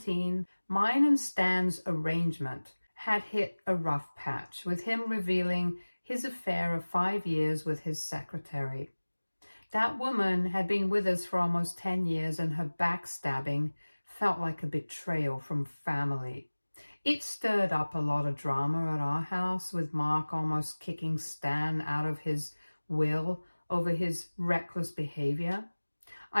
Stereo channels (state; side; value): inverted; both; correlation -1.00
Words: mine and Stan's arrangement had hit a rough patch, with him revealing his affair of 5 years with his secretary. That woman had been with us for almost 10 years, and her backstabbing felt like a betrayal from family. It stirred up a lot of drama at our house, with Mark almost kicking Stan out of his will over his reckless behavior.